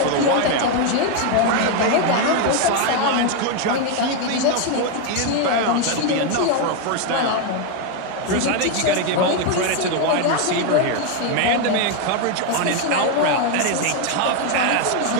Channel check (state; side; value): different; both; correlation 0.01